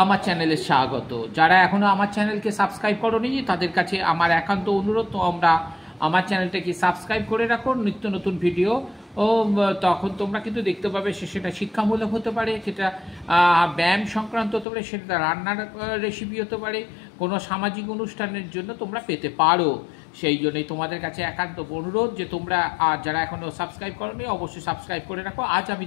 আমার চ্যানেলে স্বাগত। যারা এখনো আমার চ্যানেলকে সাবস্ক্রাইব করোনি তাদের কাছে আমার একান্ত অনুরোধ, তোমরা আমার চ্যানেলটাকে সাবস্ক্রাইব করে রাখো। নিত্য নতুন ভিডিও তখন তোমরা কিন্তু দেখতে পাবে। সেটা শিক্ষামূলক হতে পারে, সেটা ব্যায়াম সংক্রান্ত হতে পারে, সেটা রান্নার রেসিপি হতে পারে, কোনো সামাজিক অনুষ্ঠানের জন্য তোমরা পেতে পারো। সেই জন্যই তোমাদের কাছে একান্ত অনুরোধ যে তোমরা যারা এখনও সাবস্ক্রাইব করোনি অবশ্যই সাবস্ক্রাইব করে রাখো। আজ আমি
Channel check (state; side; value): drops out; right; at 14.7 s